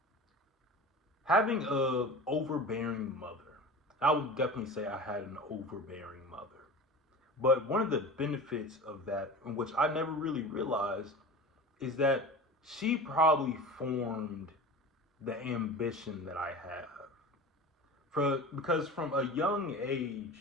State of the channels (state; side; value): normal; both; correlation 0.34